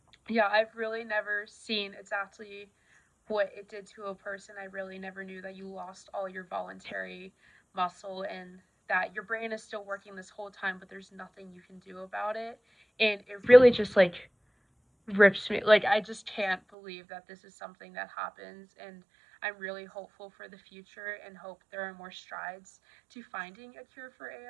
Yeah, I've really never seen exactly what it did to a person. I really never knew that you lost all your voluntary muscle and that your brain is still working this whole time, but there's nothing you can do about it. And it really just rips me. I just can't believe that this is something that happens, and I'm really hopeful for the future and hope there are more strides to finding a cure for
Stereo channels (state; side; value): drops out; left; at 16.6 s